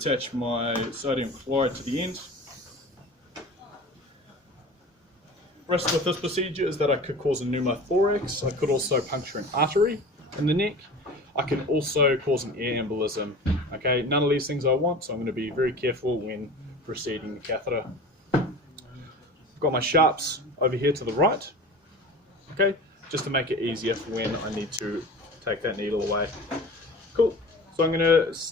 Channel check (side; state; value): both; normal; correlation 0.37